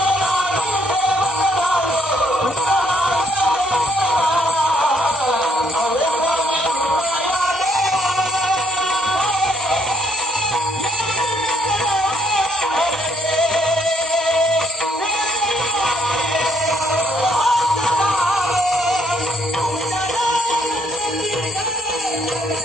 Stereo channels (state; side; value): normal; both; correlation 0.69